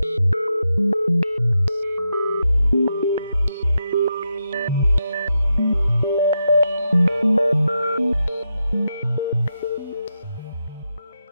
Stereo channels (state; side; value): inverted; both; correlation -0.85